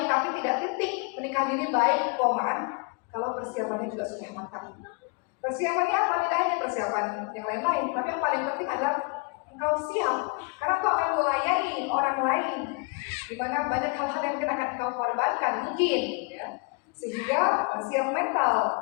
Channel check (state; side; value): quieter; right; 32.4 dB